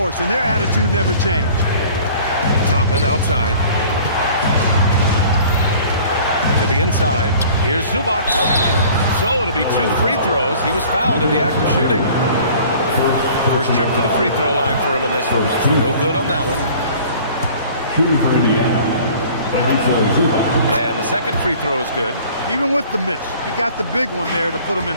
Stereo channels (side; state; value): both; inverted; correlation -0.48